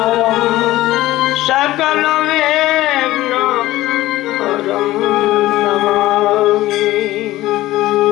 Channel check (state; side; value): quieter; right; 16.4 dB